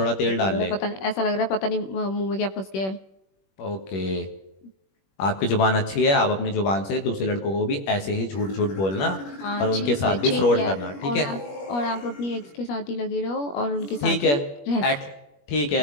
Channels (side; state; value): right; late; 21 ms